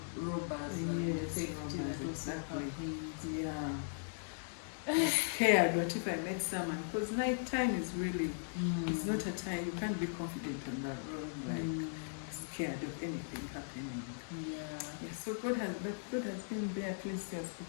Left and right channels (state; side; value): silent; right; digital silence